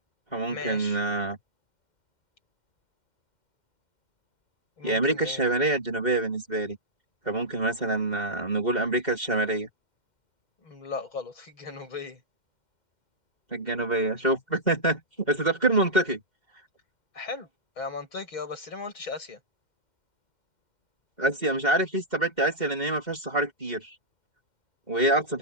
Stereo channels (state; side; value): late; right; 2.1 ms